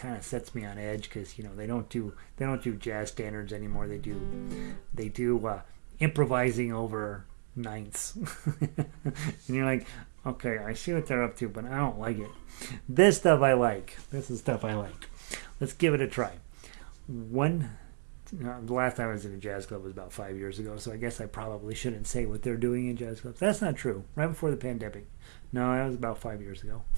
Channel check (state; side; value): silent; left; digital silence